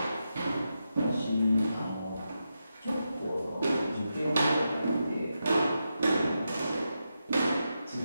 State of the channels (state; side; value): inverted; both; correlation -0.87